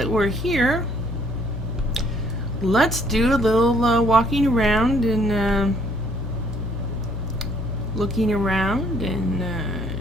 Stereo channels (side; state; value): both; normal; correlation 0.64